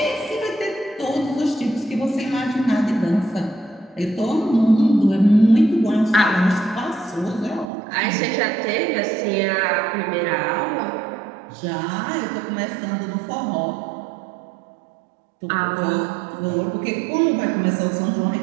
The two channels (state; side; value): drops out; left; at 7.7 s